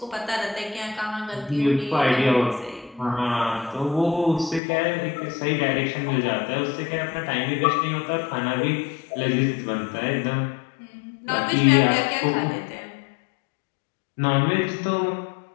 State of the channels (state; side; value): drops out; right; at 4.6 s